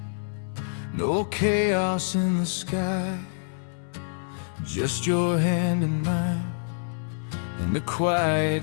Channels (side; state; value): right; silent; 60 dB below the other